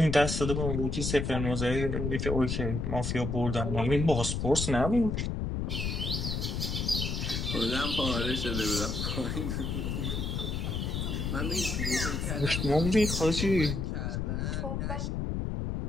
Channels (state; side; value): noise; left; rumble, 1 dB below the sound